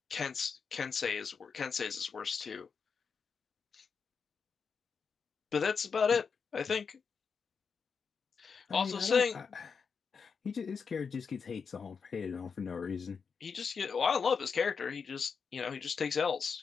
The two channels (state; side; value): quieter; right; 5.8 dB